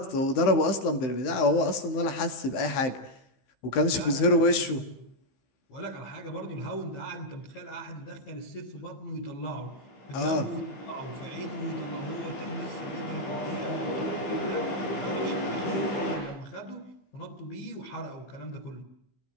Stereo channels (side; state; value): right; late; 15 ms